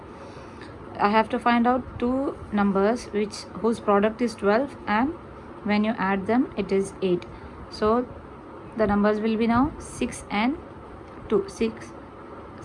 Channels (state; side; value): identical; both; correlation 1.00